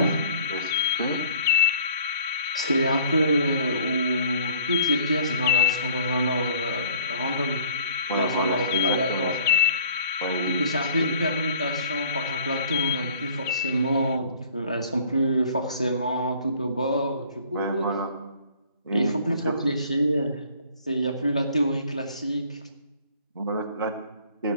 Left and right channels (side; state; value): both; inverted; correlation -0.53